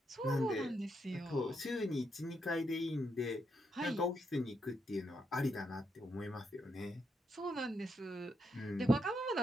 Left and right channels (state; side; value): normal; both; correlation 0.80